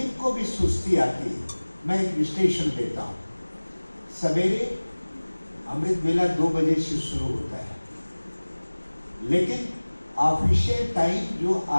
भी सुस्ती आती है, मैं एक विश्लेषण देता हूँ। सवेरे अमृत वेला 2 बजे से शुरू होता है, लेकिन ऑफिशियल टाइम जो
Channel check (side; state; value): both; inverted; correlation -1.00